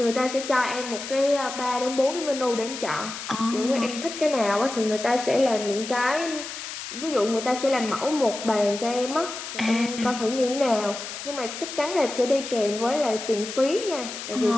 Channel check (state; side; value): noise; left; hiss, 9 dB below the sound